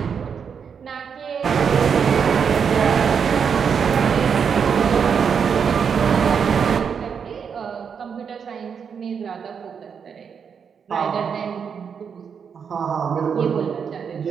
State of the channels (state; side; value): quieter; left; 6.8 dB